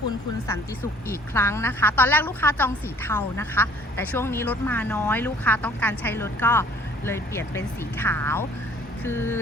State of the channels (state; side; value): normal; both; correlation 0.54